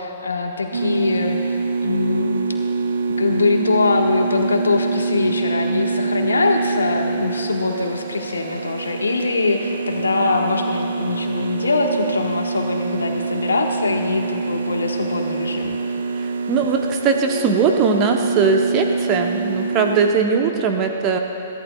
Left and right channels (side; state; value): both; inverted; correlation -0.59